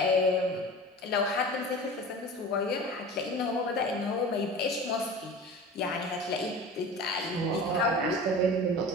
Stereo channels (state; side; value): normal; both; correlation 0.36